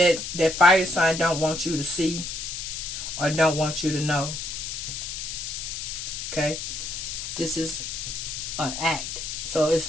fire sign don't want you to see or don't want you to know. Okay? This is an act. So it's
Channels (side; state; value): left; noise; hiss, 5 dB below the sound